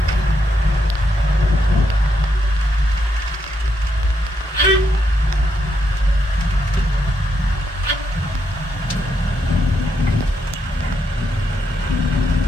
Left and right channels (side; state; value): both; normal; correlation 0.79